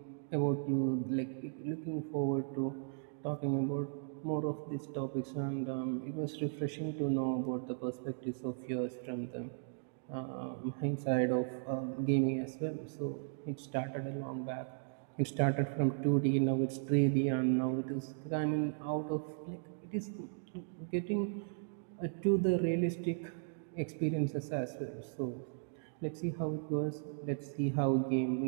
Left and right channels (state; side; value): silent; left; digital silence